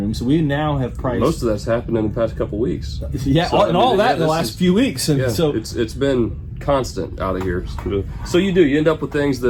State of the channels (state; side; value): identical; both; correlation 1.00